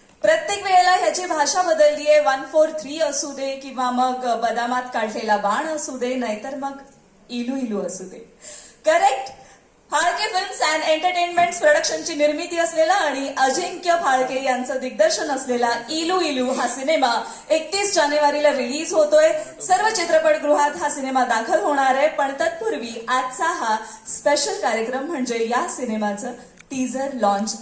प्रत्येक वेळेला ह्याची भाषा बदललीये. 143 असू दे किंवा मग बदामात काढलेला बाण असू दे, नाहीतर मग इलू इलू असू दे. Correct. Phalke films and entertainments प्रोडक्शनची निर्मिती असलेला आणि अजिंक्य फाळके यांचं दिग्दर्शन असलेला इलू इलू हा सिनेमा 31 जानेवारीला रिलीज होतोय. सर्व चित्रपटगृहात हा सिनेमा दाखल होणार आहे. पण तत्पूर्वी आजचा हा स्पेशल कार्यक्रम म्हणजे या सिनेमाचं टीझर लॉन्च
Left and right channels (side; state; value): both; identical; correlation 1.00